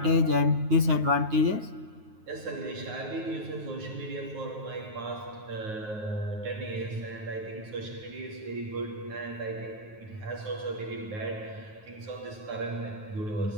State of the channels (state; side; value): late; left; 9.4 ms